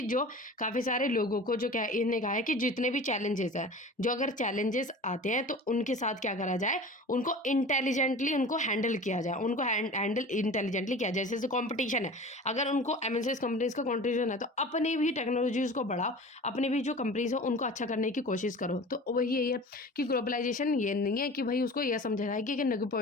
जो काफ़ी सारे लोगों को जो क्या इन्हें कहा है कि जितने भी चैलेंजेस हैं, जो अगर चैलेंजेस आते हैं तो उनके साथ क्या करा जाए, उनको इंटेलिजेंटली उनको हैंडल किया जाए, उनको हैंडल इंटेलिजेंटली किया जाए। जैसे कॉम्पिटिशन है, अगर उनको एमएनसीज कंपनीज का कॉन्ट्रीब्यूशन है तो अपने भी टेक्नोलॉजीज को बढ़ाओ, अपने भी जो कंपनीज हो उनको अच्छा करने की कोशिश करो। तो वही यही है कि ग्लोबलाइजेशन ये नहीं है कि भाई उसको यह समझा जाए कि नेगेटिव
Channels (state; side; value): normal; both; correlation 0.38